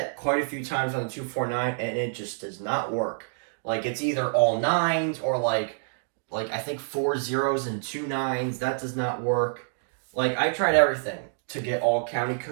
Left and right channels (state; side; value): silent; left; digital silence